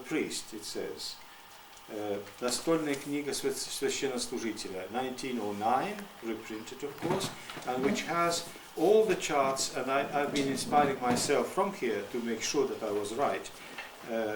it says. Настольная книга священнослужителя, 1909, reprinted of course, and which has all the charts, and I've been inspiring myself from here to make sure that I was right,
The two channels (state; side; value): identical; both; correlation 1.00